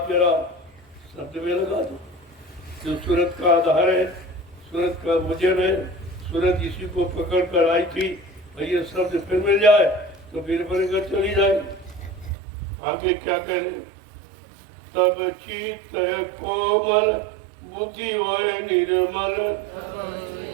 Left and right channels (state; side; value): drops out; left; at 12.4 s